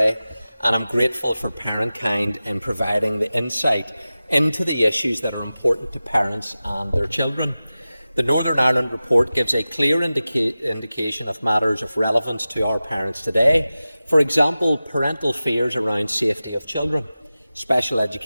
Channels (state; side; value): inverted; both; correlation -0.95